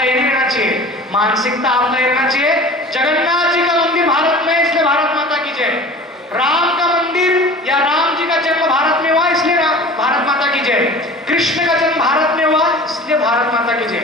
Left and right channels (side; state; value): both; normal; correlation 0.40